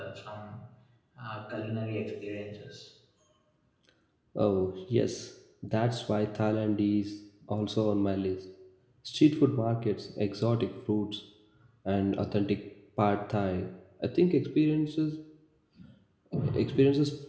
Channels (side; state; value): both; identical; correlation 1.00